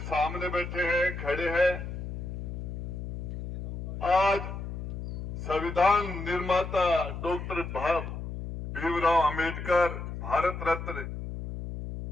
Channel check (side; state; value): left; noise; hum, 7 dB below the sound